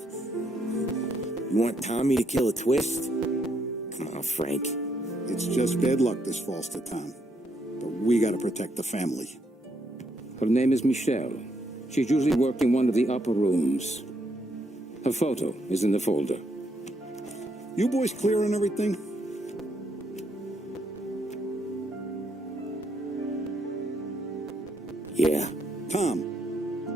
You want Tommy to kill a twist? Come on, Frank. It's just bad luck this falls to Tom. But we gotta protect the family. Her name is Michelle. She's usually working one of the upper rooms. Her photo is in the folder. You boys clear on everything? Yeah. Tom.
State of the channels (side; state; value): both; normal; correlation 0.75